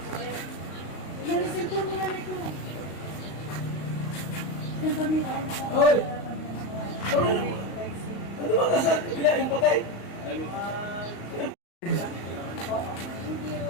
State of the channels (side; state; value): right; late; 35 ms